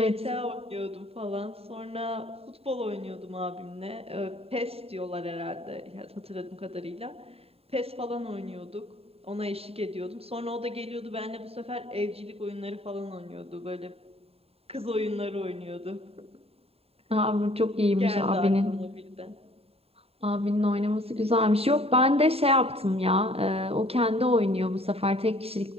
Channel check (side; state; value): left; late; 0.29 ms